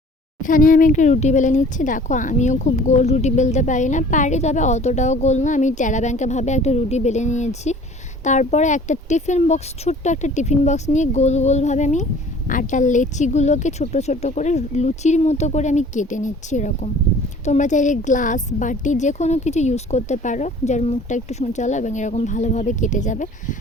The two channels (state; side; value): normal; both; correlation 0.49